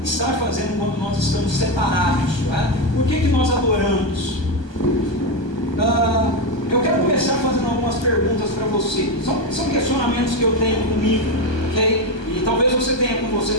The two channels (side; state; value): right; late; 1.2 ms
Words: estar fazendo quando nós estamos separados, né? Por que nós adoramos? Eu quero começar fazendo algumas perguntas para você. São questionamentos que eu tenho comigo, ok? E talvez você tenha com você